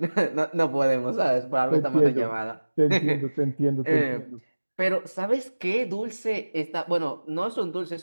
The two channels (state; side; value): inverted; both; correlation -1.00